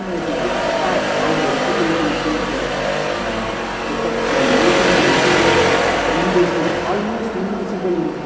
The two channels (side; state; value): both; identical; correlation 1.00